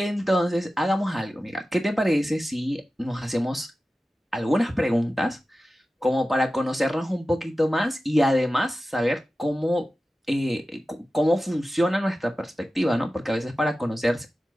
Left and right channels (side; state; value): both; normal; correlation 0.95